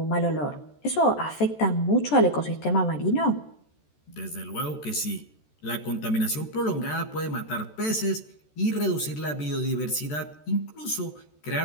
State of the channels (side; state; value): right; late; 14 ms